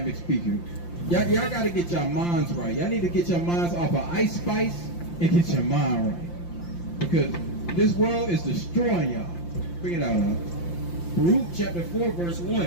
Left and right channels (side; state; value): right; late; 5.8 ms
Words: speaker. Y'all got to get your minds right. Y'all need to get your minds off of Ice Spice and get your mind right. Because this world is destroying y'all. Bring it out, huh? Baruch chapter 4 verse